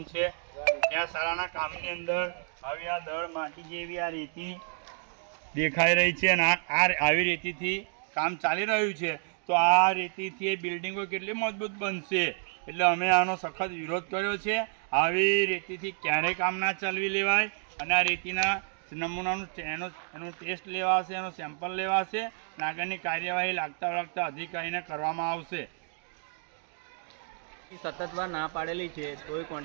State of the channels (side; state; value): left; silent; 56 dB below the other